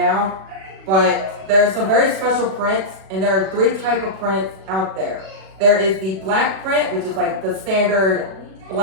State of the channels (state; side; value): late; left; 37 ms